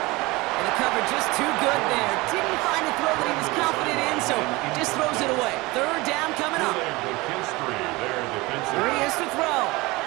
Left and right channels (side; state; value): left; quieter; 22.3 dB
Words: And the cover just too good there. Didn't find the throw that he was confident in, so just throws it away. 3rd down coming up. Here he is to throw.